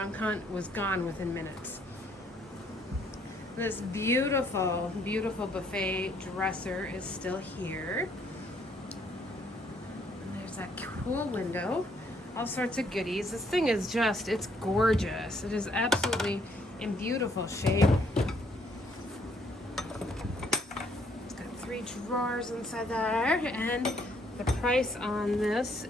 hunt was gone within minutes. This beautiful, beautiful buffet dresser is still here. And there's that cool window. All sorts of goodies. This thing is just, it's gorgeous. It is absolutely in beautiful shape. It's got 3 drawers inside there. And the price on this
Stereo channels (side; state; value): both; normal; correlation 0.67